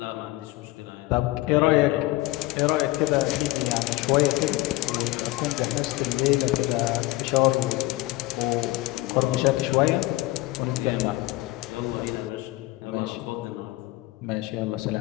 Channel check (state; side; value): quieter; right; 19.4 dB